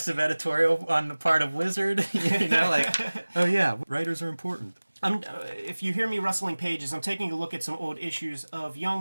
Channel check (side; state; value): both; inverted; correlation -1.00